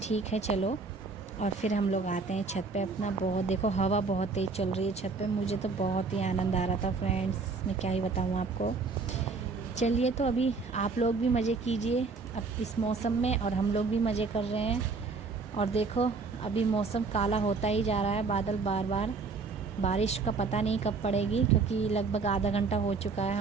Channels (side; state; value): left; quieter; 4.4 dB